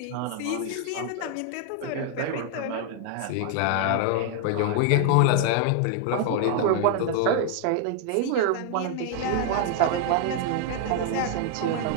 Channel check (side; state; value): both; different; correlation 0.00